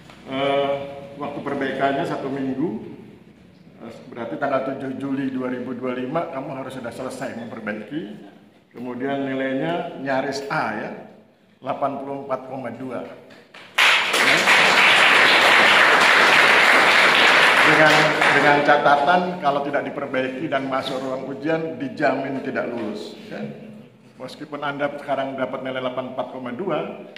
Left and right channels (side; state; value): both; identical; correlation 1.00